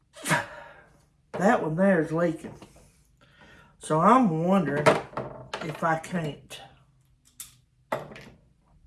That one there is leaking. So I'm wondering if I can't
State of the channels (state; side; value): identical; both; correlation 1.00